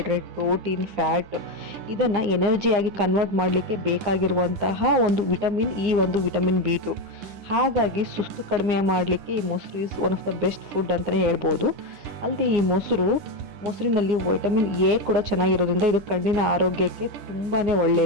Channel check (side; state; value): left; late; 9.8 ms